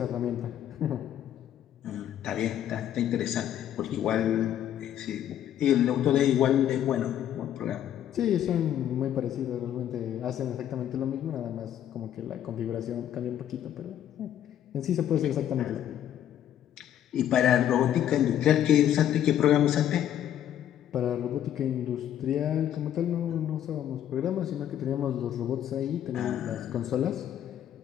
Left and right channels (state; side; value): quieter; right; 10.7 dB